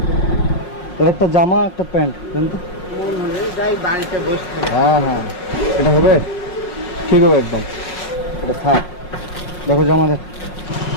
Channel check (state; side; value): late; right; 5.5 ms